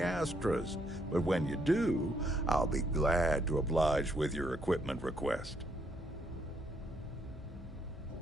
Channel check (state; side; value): normal; both; correlation 0.72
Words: But when you do, I'll be glad to oblige with your equipment request.